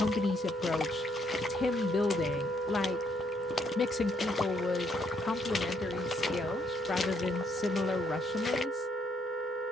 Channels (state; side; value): normal; both; correlation 0.72